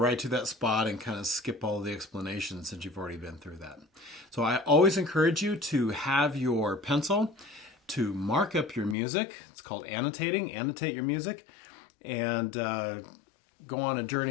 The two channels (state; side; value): drops out; right; at 9.0 s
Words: to that spot and kind of skip all the explanations since you've already been through that. So I always encourage you to have your pencil to mark up your music. It's called annotating. Annotate your music and go on a